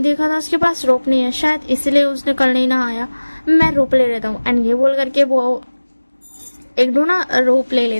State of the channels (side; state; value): both; inverted; correlation -1.00